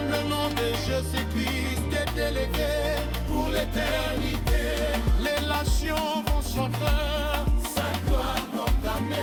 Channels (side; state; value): both; identical; correlation 1.00